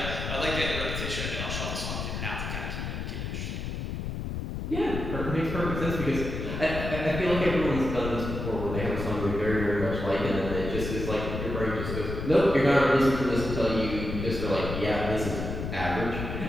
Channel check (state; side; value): noise; left; rumble, 4 dB below the sound